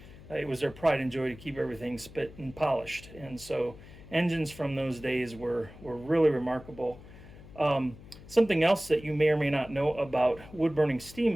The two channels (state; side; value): noise; left; hum, 18 dB below the sound